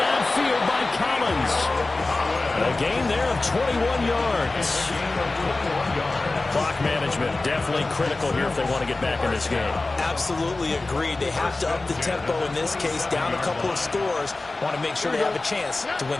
by Collins. A gain there of 21 yards. Clock management definitely critical here if they want to get back in this game. Absolutely agreed. They have to up the tempo in this case, down a couple of scores. Want to make sure they have a chance to win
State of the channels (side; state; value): right; quieter; 3.2 dB